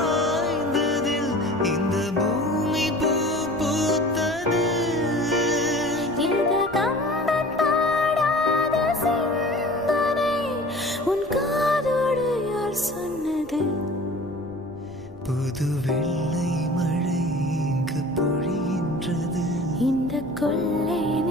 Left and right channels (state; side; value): noise; left; rumble, 22 dB below the sound